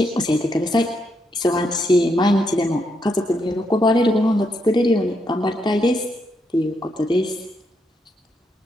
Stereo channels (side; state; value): both; normal; correlation 0.79